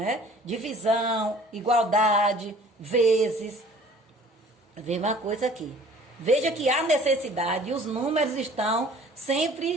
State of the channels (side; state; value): both; normal; correlation 0.50